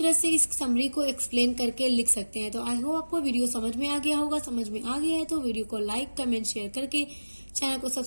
से इस समरी को एक्सप्लेन करके लिख सकते हैं। तो आई होप आपको वीडियो समझ में आ गया होगा। समझ में आ गया है तो वीडियो को लाइक, कमेंट, शेयर करके चैनल को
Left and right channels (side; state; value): both; inverted; correlation -1.00